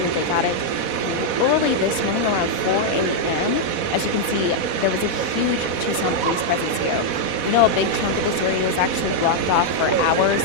They got it early this morning around 4 a.m. As you can see, there was a huge Tucson police presence here. We know a big chunk of this area was actually blocked off for hours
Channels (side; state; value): left; late; 4.1 ms